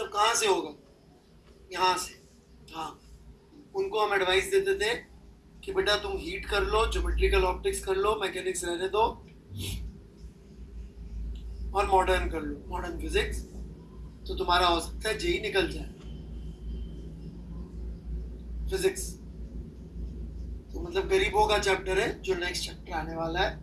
कहाँ से होगा, यहाँ से। हाँ, उनको हम एडवाइस देते थे कि बेटा तुम हीट कर लो, ज्योमेट्रिकल ऑप्टिक्स कर लो, मैकेनिक्स रहने दो, और मॉडर्न कर लो, मॉडर्न फिजिक्स, तो तुम्हारा हो सकता है जेई निकल जाए फिजिक्स। तो मतलब गरीबों का चैप्टर है जो नेक्स्ट चैप्टर आने वाला है,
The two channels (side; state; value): both; identical; correlation 1.00